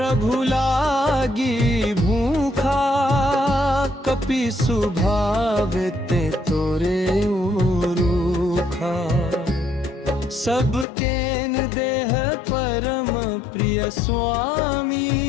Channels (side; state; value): right; drops out; at 10.9 s